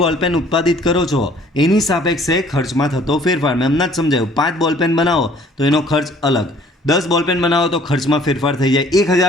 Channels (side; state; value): both; normal; correlation 0.56